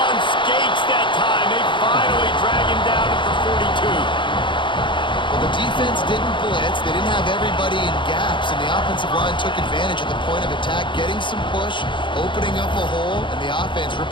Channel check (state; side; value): late; right; 0.23 ms